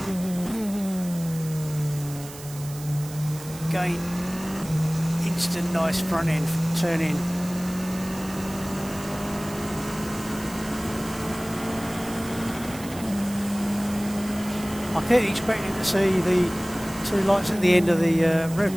Again, instant nice front end turn in. I kept expecting to see the two lights at the end of the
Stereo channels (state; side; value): noise; right; hiss, 15 dB below the sound